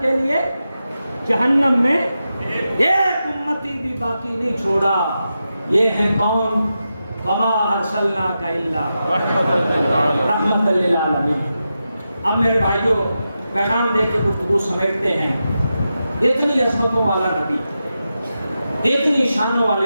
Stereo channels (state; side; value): inverted; both; correlation -0.89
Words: کے لیے جہنم میں ایک امتی بھی باقی نہیں چھوڑا۔ یہ ہے کون؟ وما ارسلناک الا رحمۃ للعالمین۔ اب میرے بھائیوں پیغام دے کے گفتگو سمیٹتے ہیں۔ اتنی عظمتوں والا نبی، اتنی شانوں